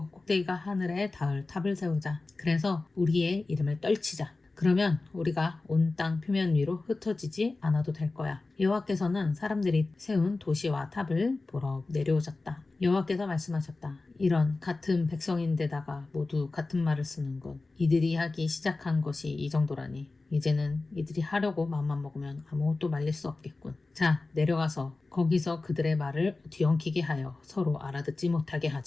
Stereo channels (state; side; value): quieter; right; 3.4 dB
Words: 꼭대기가 하늘에 닿을 탑을 세우자. 그래서 우리의 이름을 떨치자. 그러면 우리가 온 땅 표면 위로 흩어지지 않아도 될 거야. 여호와께서는 사람들이 세운 도시와 탑을 보러 내려오셨다. 여호와께서 말씀하셨다. 이런 같은 백성인데다가 모두 같은 말을 쓰는군. 이들이 하기 시작한 것이 이 정도라니. 이제는 이들이 하려고 마음만 먹으면 아무것도 말릴 수 없겠군. 자, 내려가서 거기서 그들의 말을 뒤엉키게 하여 서로 알아듣지 못하게